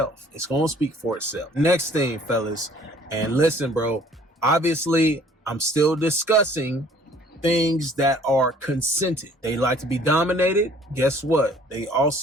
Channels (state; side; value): normal; both; correlation 0.56